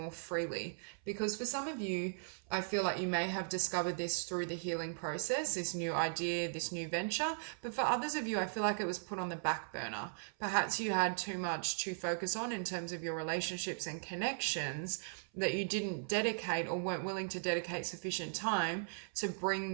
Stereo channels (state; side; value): silent; left; 53 dB below the other